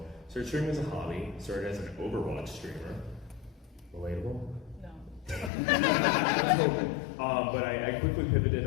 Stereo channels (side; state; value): right; drops out; at 5.5 s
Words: started streaming as a hobby, started as an Overwatch streamer. Relatable? No. But I quickly pivoted